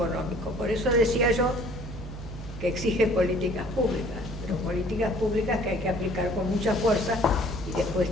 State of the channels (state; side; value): normal; both; correlation 0.55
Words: Por eso decía yo que exige políticas públicas, pero políticas públicas que hay que aplicar con mucha fuerza y después